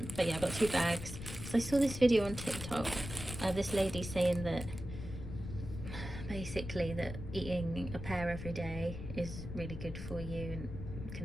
But yeah, I got 2 bags. So I saw this video on TikTok, this lady saying that basically that eating a pear every day is really good for you and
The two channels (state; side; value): noise; left; rumble, 8 dB below the sound